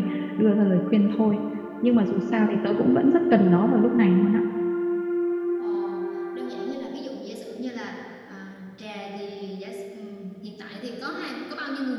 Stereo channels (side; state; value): both; identical; correlation 1.00